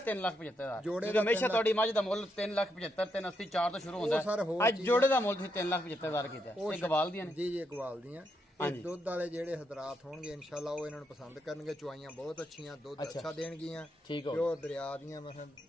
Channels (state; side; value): normal; both; correlation 0.80